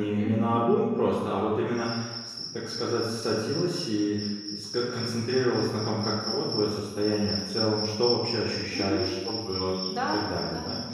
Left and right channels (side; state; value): both; identical; correlation 1.00